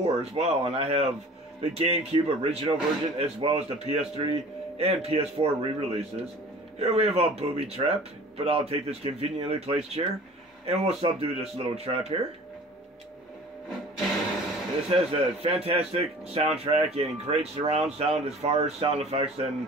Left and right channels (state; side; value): normal; both; correlation 0.45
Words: as well. And I have the GameCube original version as well as the PS3 and PS4 re-releases. Here we have a booby trap, but I'll take this conveniently placed chair and we'll subdue this little trap here. This has a fantastic soundtrack and great surround sound as far as sound effects